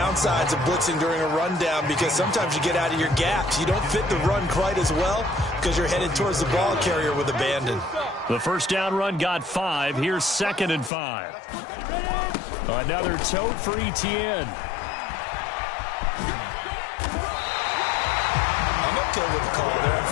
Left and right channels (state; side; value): drops out; right; at 10.9 s